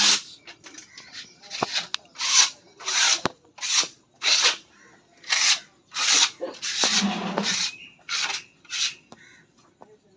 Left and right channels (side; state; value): both; identical; correlation 1.00